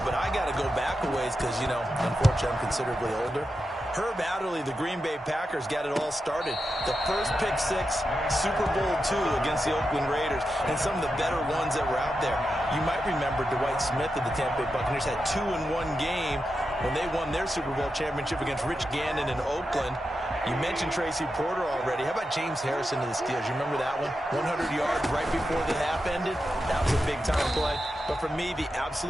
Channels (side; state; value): both; normal; correlation 0.89